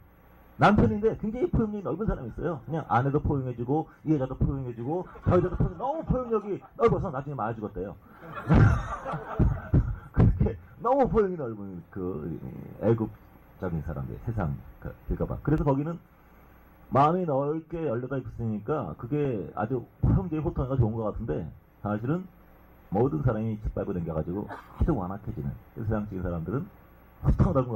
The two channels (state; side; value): identical; both; correlation 1.00